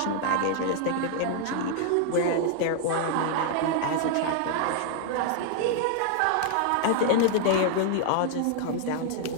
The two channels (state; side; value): different; both; correlation 0.00